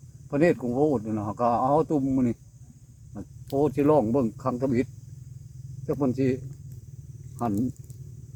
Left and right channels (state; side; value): identical; both; correlation 1.00